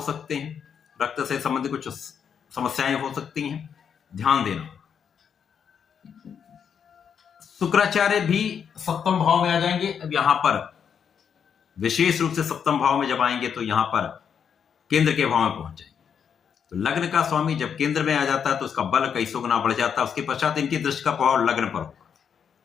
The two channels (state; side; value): quieter; right; 7.4 dB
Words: सकते हैं, रक्त से संबंधित कुछ समस्याएं हो सकती हैं, ध्यान देना। शुक्राचार्य भी सप्तम भाव में आ जाएंगे। अब यहां पर विशेष रूप से सप्तम भाव में जब आएंगे तो यहां पर केंद्र के भाव में पहुंच जाएंगे, तो लग्न का स्वामी जब केंद्र में आ जाता है तो उसका बल कई सौ गुना बढ़ जाता है। उसके पश्चात इनकी दृष्टि का प्रभाव लग्न पर होगा,